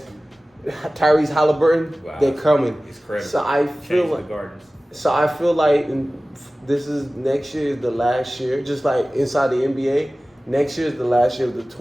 Tyrese Halliburton. Wow. They're coming. It's crazy. So I feel like this is next year is the last year, just like inside the NBA. Next year is the last year of the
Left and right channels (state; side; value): normal; both; correlation 0.97